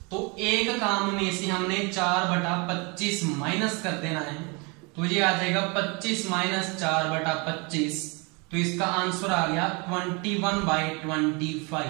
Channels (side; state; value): left; quieter; 30.1 dB